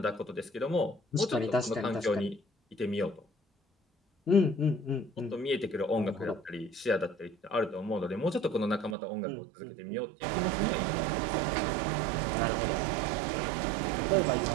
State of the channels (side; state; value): left; drops out; at 9.0 s